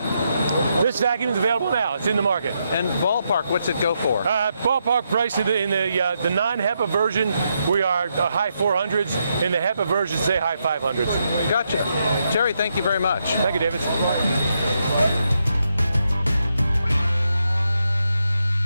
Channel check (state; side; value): inverted; both; correlation -0.81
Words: This vacuum is available now. It's in the market. And ballpark, what's it go for? Ballpark price in the non-HEPA version, we are high 400s. In the HEPA version, say high 500s. Gotcha. Terry, thank you very much. Thank you, David.